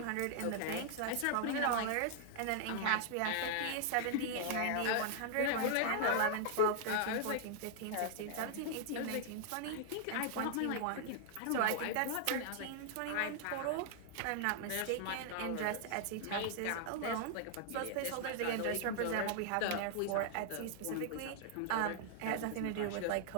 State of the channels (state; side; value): different; both; correlation -0.01